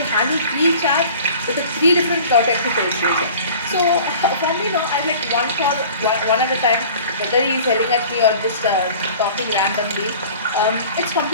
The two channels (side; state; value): both; inverted; correlation -0.45